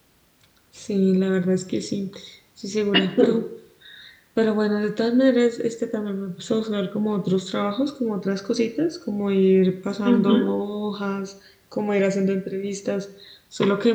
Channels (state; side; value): identical; both; correlation 1.00